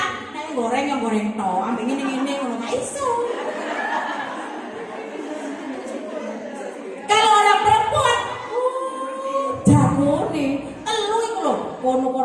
Nek goreng ya goreng to, ambek ngene-ngene ngono gak iso. Kalau orang perempuan jagone kono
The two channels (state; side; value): identical; both; correlation 1.00